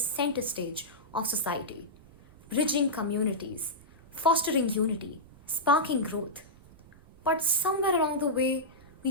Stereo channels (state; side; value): noise; right; rumble, 24 dB below the sound